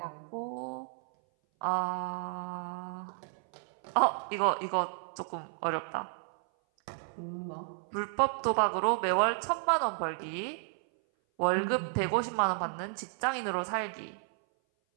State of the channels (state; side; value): silent; left; 56 dB below the other